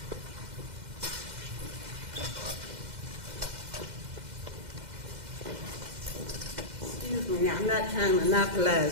Excuse me, now, I'm not trying to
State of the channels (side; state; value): left; late; 2.1 ms